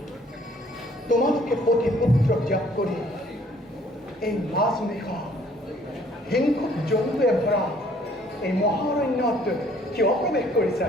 তোমালোকে পতি পুত্ৰ ত্যাগ কৰি এই মাছ নিশা হিংসুক জন্তুৱে ভৰা এই মহাৰণ্যত কিয় প্ৰৱেশ কৰিছা?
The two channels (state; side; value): normal; both; correlation 0.60